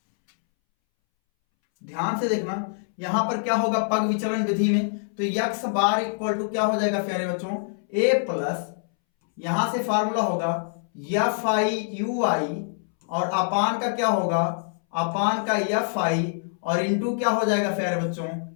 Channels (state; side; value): silent; right; 62 dB below the other